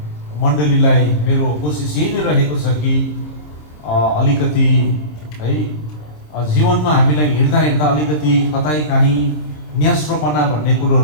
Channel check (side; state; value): right; late; 26 ms